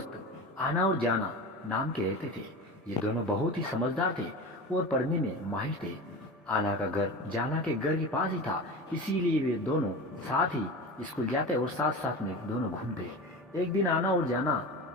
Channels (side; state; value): both; normal; correlation 0.29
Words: आना और जाना नाम के रहते थे। ये दोनों बहुत ही समझदार थे और पढ़ने में माहिर थे। आना का घर जाना के घर के पास ही था, इसीलिए वे दोनों साथ ही स्कूल जाते और साथ साथ में दोनों घूमते। एक दिन आना और जाना